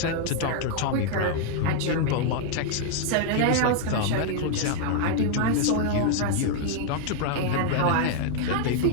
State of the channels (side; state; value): both; different; correlation 0.00